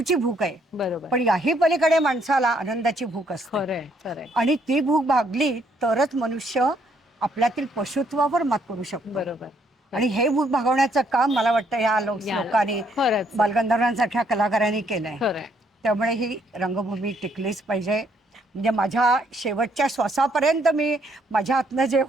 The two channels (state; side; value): normal; both; correlation 0.69